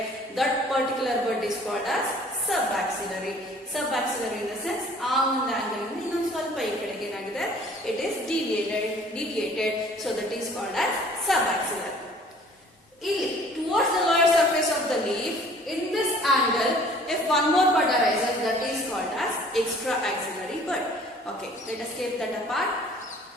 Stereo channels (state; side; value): normal; both; correlation 0.53